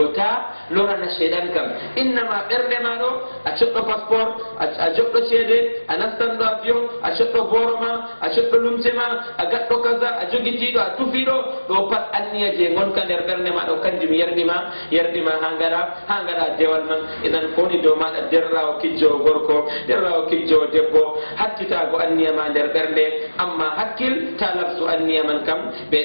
ta lorana shaiɗan kam innama ɓernde ma ɗo a coɗɗo passeport a joɗɗo ceede a nastanɗo avion a coɗɗo boro ma a coɗɗo lumce ma a gaɗɗo kaza a jogitiɗo a tufiɗo ɗo pat anniya je gonka nder ɓernde ma ɗo kanjum yerɗima ha gaɗa dewal man idan foni dow maɗa derrawo kijjowo gorko derrawo kijjowo debbo hattitago anniya ma nder ɓernde amma hakkil ta lafsu anniya man kam ɓe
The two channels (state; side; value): inverted; both; correlation -1.00